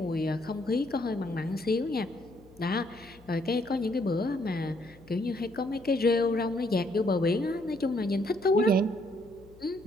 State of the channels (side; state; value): left; noise; hum, 25 dB below the sound